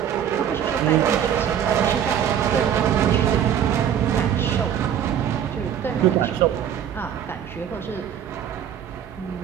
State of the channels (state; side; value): quieter; left; 9.3 dB